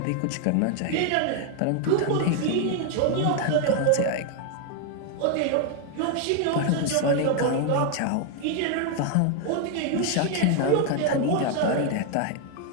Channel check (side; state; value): both; different; correlation 0.01